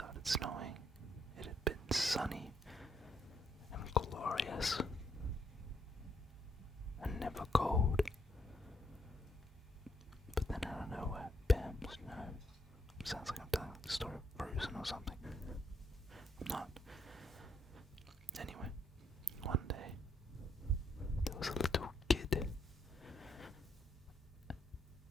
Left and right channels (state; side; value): normal; both; correlation 0.75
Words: snowing, it had been sunny and glorious and never cold. But then out of nowhere, bam, snow. Sounds like I'm telling the story of Frozen or something. I'm not. Anyway, one day, there was a little kid.